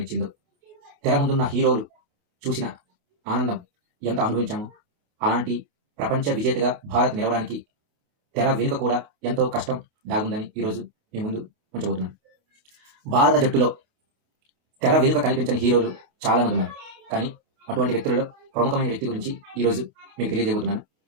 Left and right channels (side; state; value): left; late; 28 ms